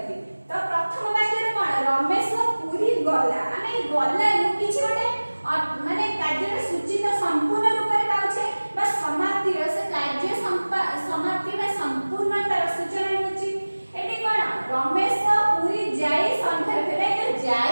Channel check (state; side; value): inverted; both; correlation -1.00